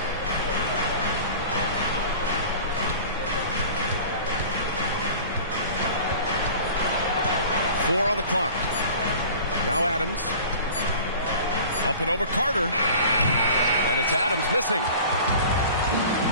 Four on the clock. Now Adams. Up and over Carter. And it's Adams missing.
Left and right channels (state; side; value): inverted; both; correlation -0.42